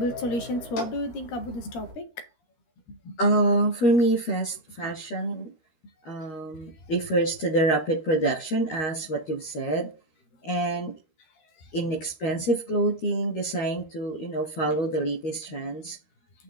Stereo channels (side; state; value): right; late; 13 ms